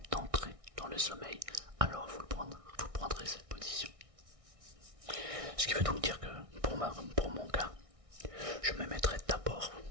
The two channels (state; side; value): late; left; 1.6 ms